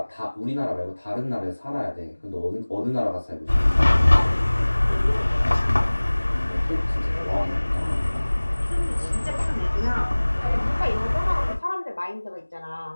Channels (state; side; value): inverted; both; correlation -1.00